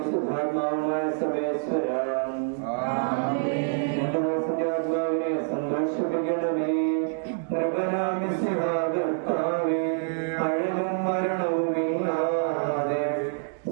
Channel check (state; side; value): silent; left; digital silence